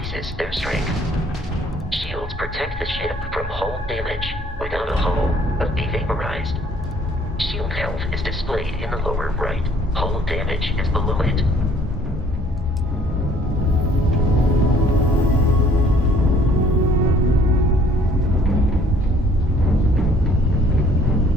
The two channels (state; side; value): normal; both; correlation 0.59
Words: strength. Shields protect the ship from hull damage. Without a hull, be vaporized. Shield health is displayed in the lower right. Hull damage is below it.